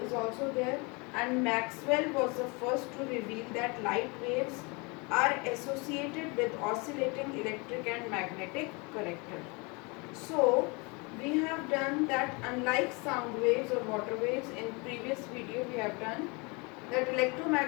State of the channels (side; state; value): right; quieter; 28.9 dB